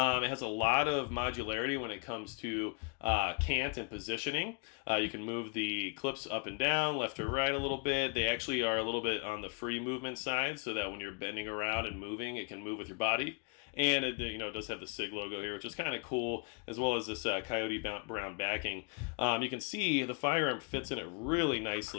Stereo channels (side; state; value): right; quieter; 37.1 dB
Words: has a lot of modularity when it comes to cant and positioning. You can move the clips up and down, left or right a little bit. They actually are a little bit on the free movement side, so that when you're bending around and moving, it can move with your body. And it does have the SIG logo here, which is kind of cool, as well as this coyote brown backing. You can see the firearm fits in it really